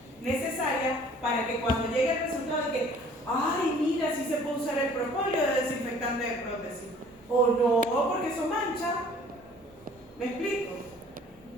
necesaria para que cuando llegue el resultado de que, ay, mira, sí se puede usar el propóleo de desinfectante de prótesis, o no, porque eso mancha. ¿Me explico?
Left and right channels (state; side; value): noise; right; rumble, 30 dB below the sound